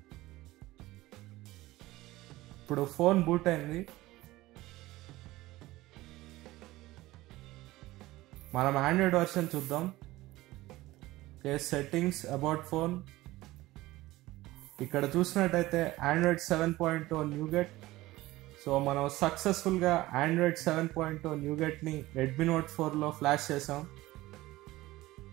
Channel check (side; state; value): left; quieter; 18.0 dB